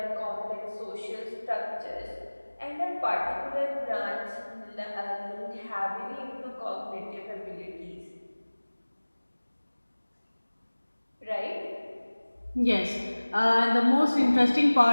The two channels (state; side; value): inverted; both; correlation -1.00